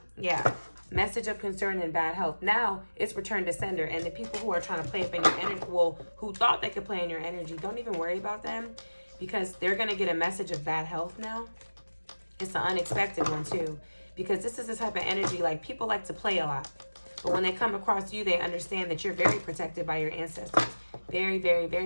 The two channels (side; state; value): both; inverted; correlation -1.00